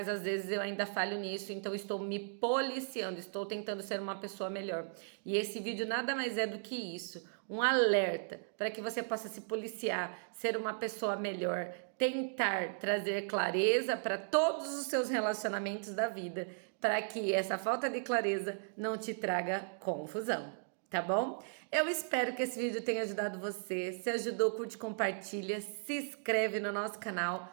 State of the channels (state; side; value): silent; left; digital silence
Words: às vezes eu ainda falho nisso, então estou me policiando, estou tentando ser uma pessoa melhor. E esse vídeo nada mais é do que isso, um alerta para que você possa se policiar, ser uma pessoa melhor, tentar trazer clareza para todos os seus relacionamentos da vida, para que essa falta de clareza não te traga confusão. tá bom? Eu espero que esse vídeo tenha ajudado você. Se ajudou, curte, compartilha, se inscreve no nosso